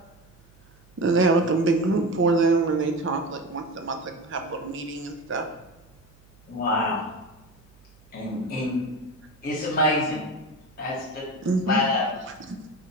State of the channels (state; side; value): noise; right; hum, 28 dB below the sound